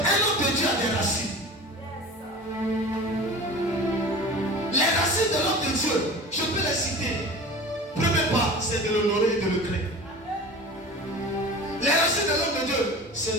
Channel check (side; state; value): both; normal; correlation 0.36